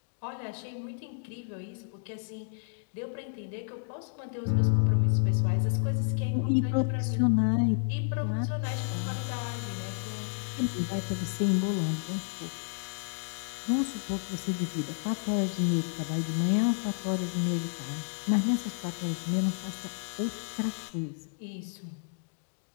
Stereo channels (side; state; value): right; silent; digital silence